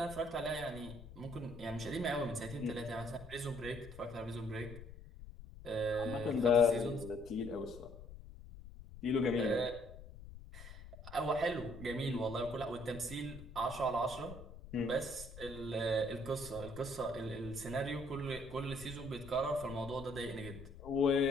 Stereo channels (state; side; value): noise; left; rumble, 14 dB below the sound